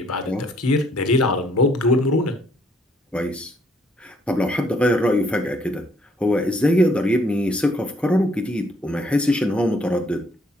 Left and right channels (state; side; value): normal; both; correlation 0.66